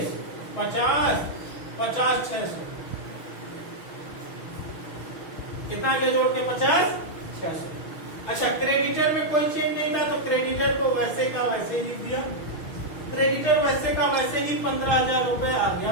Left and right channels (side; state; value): right; late; 6.3 ms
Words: 50 50 600। कितना आगे जोड़ के 50 600। अच्छा क्रेडिटर में कोई चेंज नहीं था तो क्रेडिटर को वैसे का वैसे ही लिख दिया। क्रेडिटर वैसे का वैसे ही 15,000 रुपए आ